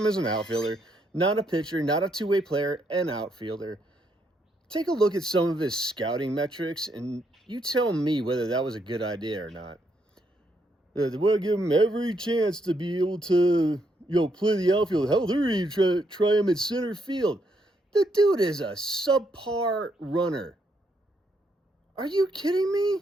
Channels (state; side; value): normal; both; correlation 0.76